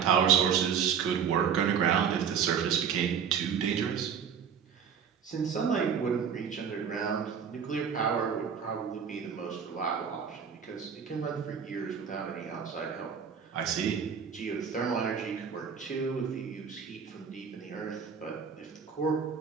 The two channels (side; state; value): left; quieter; 7.2 dB